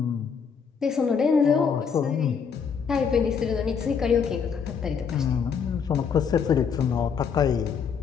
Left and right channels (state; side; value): quieter; right; 6.5 dB